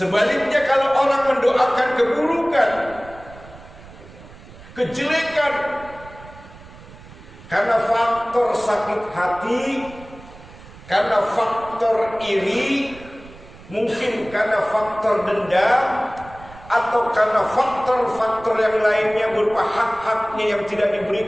kalau orang mendoakan keburukan, kejelekan, karena faktor sakit hati, karena faktor iri, mungkin karena faktor dendam, atau karena faktor-faktor yang lainnya berupa hak-haknya yang tidak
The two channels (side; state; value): right; noise; rumble, 19 dB below the sound